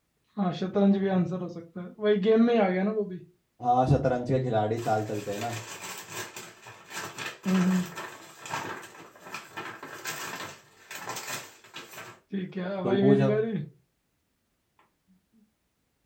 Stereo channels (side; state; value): both; identical; correlation 1.00